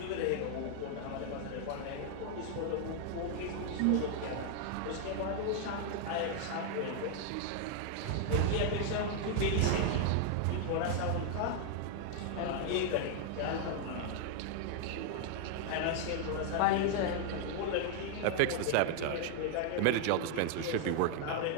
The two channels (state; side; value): different; both; correlation 0.00